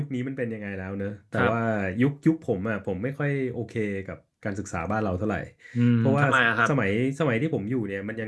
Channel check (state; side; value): identical; both; correlation 1.00